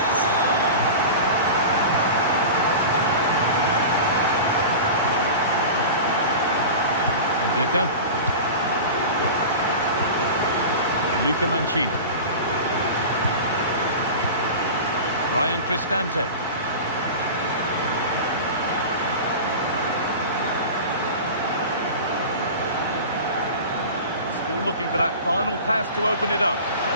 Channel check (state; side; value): inverted; both; correlation -0.32